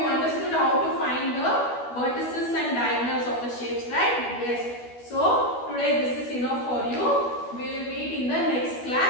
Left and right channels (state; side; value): late; right; 12 ms